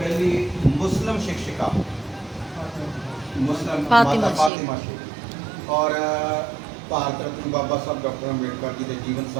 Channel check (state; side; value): drops out; left; at 4.5 s